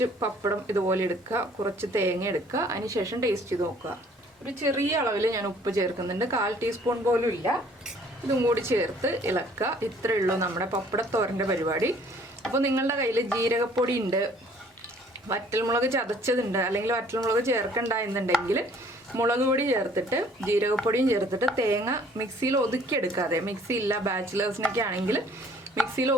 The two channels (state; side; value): normal; both; correlation 0.57